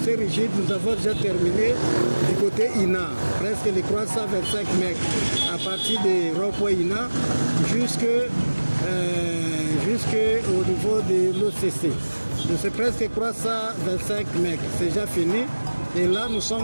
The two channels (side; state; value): both; inverted; correlation -1.00